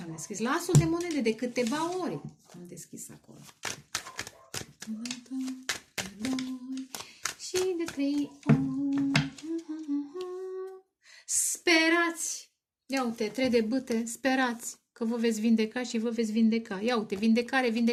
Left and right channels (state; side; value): identical; both; correlation 1.00